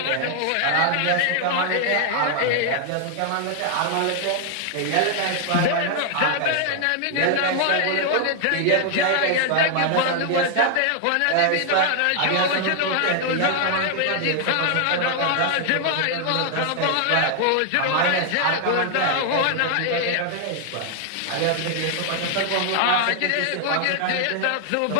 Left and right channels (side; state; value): both; different; correlation 0.00